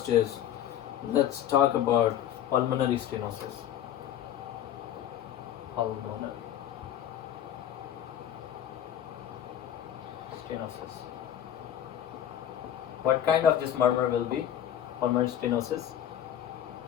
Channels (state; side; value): quieter; right; 10.6 dB